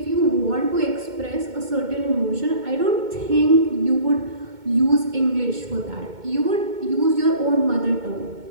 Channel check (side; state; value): left; late; 2.2 ms